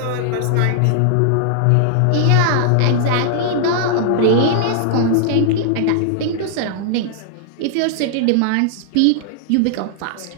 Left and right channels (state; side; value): different; both; correlation -0.01